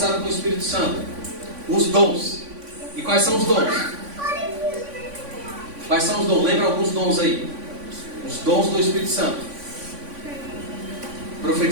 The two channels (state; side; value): late; left; 3.5 ms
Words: com o Espírito Santo: os dons. E quais são os dons? Quais são os dons? Lembra alguns dons aí? Os dons do Espírito Santo: